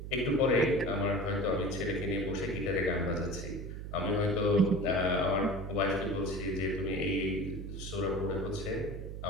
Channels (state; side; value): noise; right; hum, 8 dB below the sound